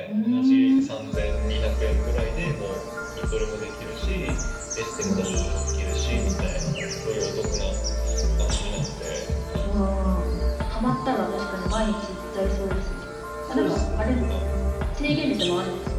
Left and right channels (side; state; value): both; identical; correlation 1.00